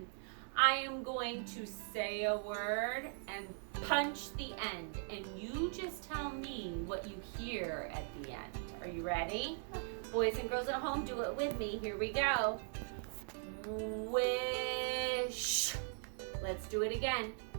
I am going to say a word and punch the end, and you just tell me what you hear at the end. Are you ready? Boys and girls at home, do it with me. Here we go. Wish. Let's do it again.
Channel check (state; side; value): silent; left; 51 dB below the other